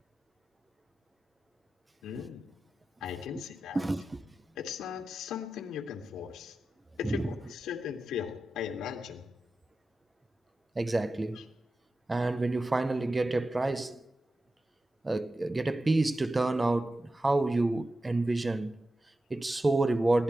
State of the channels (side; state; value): both; normal; correlation 0.93